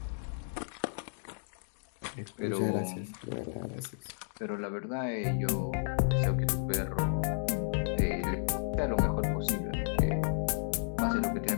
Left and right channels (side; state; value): right; silent; digital silence